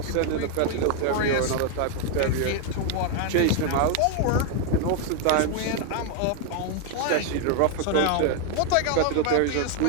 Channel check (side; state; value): both; different; correlation 0.01